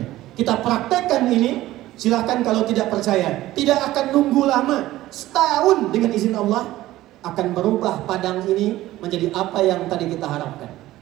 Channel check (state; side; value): quieter; left; 15.8 dB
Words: Kita praktekkan ini, silahkan kalau tidak percaya. Tidak akan nunggu lama, setahun dengan izin Allah akan berubah Padang ini menjadi apa yang tadi kita harapkan.